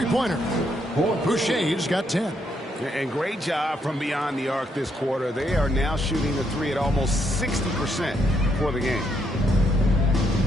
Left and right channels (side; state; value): both; normal; correlation 0.75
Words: Boucher's got 10. And great job from beyond the arc this quarter. They are now shooting the three at almost 60% for the game.